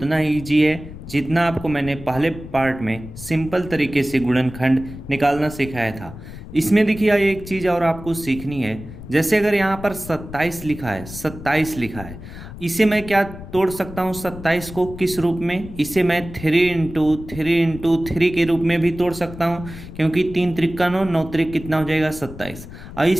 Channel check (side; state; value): left; noise; rumble, 13 dB below the sound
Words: ही ईजी है जितना आपको मैंने पहले पार्ट में सिंपल तरीके से गुणनखंड निकालना सिखाया था। इसमें देखिए एक चीज़ और आपको सीखनी है। जैसे अगर यहाँ पर 27 लिखा है, 27 लिखा है, इसे मैं क्या तोड़ सकता हूँ? 27 को किस रूप में? इसे मैं 3 × 3 × 3 के रूप में भी तोड़ सकता हूँ, क्योंकि 3 त्रिक 9, 9 त्रिक कितना हो जाएगा? 27। और